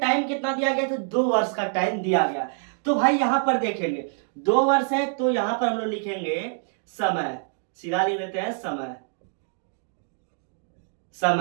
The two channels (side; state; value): left; silent; 61 dB below the other